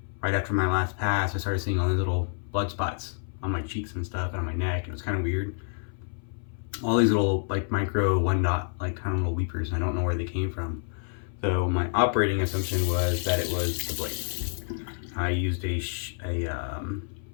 right after my last pass, I started seeing all these little blood spots on my cheeks and stuff, and on my neck. It was kind of weird. All these little like micro 1 dot like kind of little weepers, and I don't know where they came from. So my operating assumption was that it was the blade. I used a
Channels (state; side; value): silent; right; 58 dB below the other